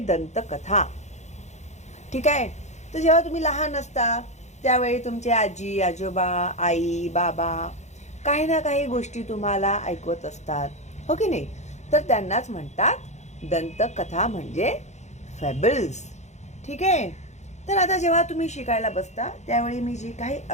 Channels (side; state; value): right; late; 0.33 ms